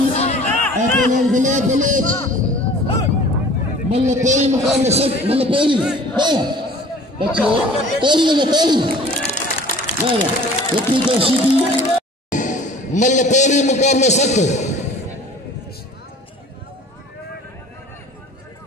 पहलवान गुलाब बलोच मल्ल पेरी मुकाबले सब मल्ल पेरी बच्चों पेरी लगे पेरी वाह लकी तो शीदी मल्ल पेरी मुकाबले सख्त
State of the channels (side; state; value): both; normal; correlation 0.47